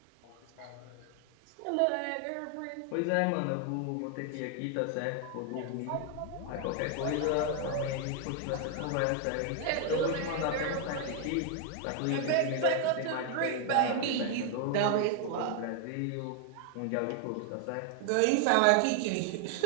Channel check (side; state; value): both; different; correlation 0.00